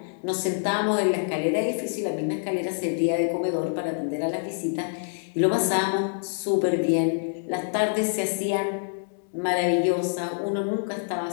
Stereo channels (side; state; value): right; silent; digital silence